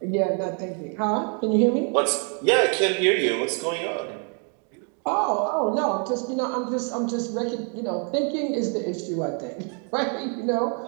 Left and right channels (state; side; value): quieter; left; 39.9 dB